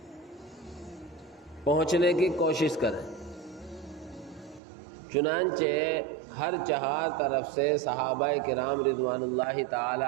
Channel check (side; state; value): left; drops out; at 4.6 s